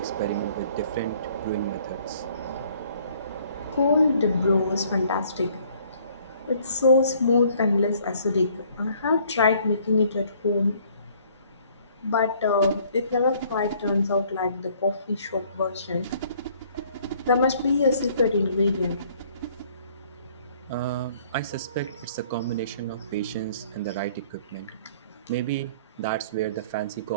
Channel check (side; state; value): both; inverted; correlation -0.59